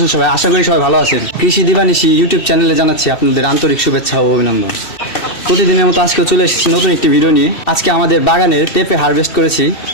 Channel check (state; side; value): late; right; 2.7 ms